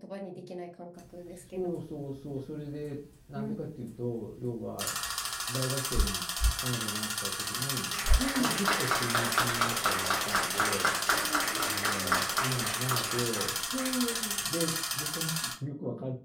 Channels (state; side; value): identical; both; correlation 1.00